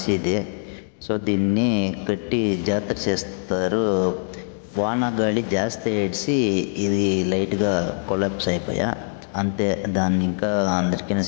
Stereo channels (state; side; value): silent; right; digital silence